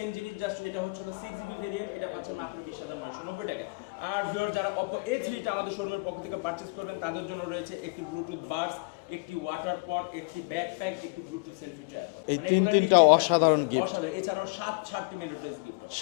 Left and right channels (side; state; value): right; quieter; 30.6 dB